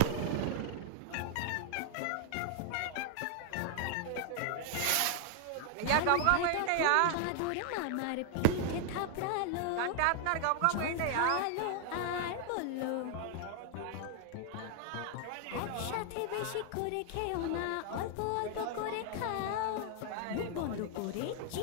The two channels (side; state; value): both; different; correlation 0.00